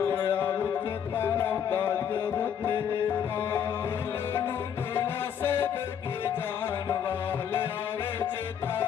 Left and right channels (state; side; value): quieter; right; 8.5 dB